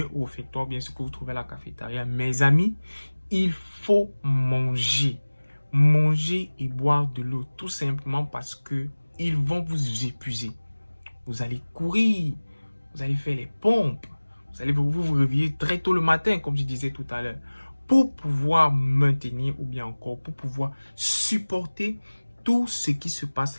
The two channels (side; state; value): both; inverted; correlation -1.00